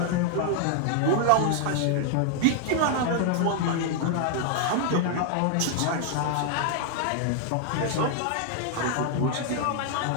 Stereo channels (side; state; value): both; different; correlation 0.00